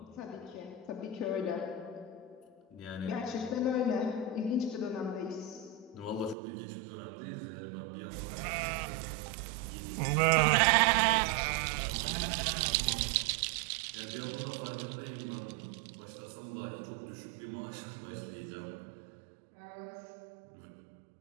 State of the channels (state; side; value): drops out; left; at 6.4 s